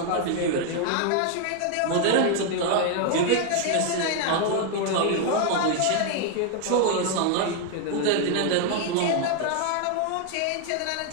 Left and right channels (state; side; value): different; both; correlation 0.00